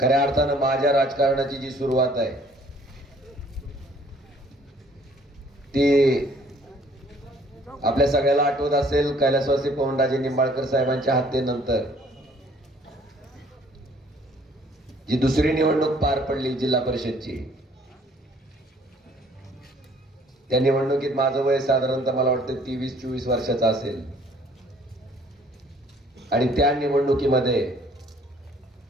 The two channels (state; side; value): normal; both; correlation 0.58